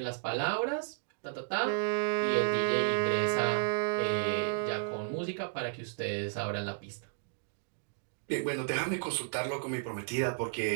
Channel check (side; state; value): left; silent; digital silence